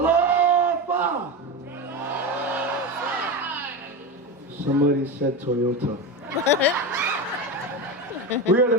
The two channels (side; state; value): both; normal; correlation 0.20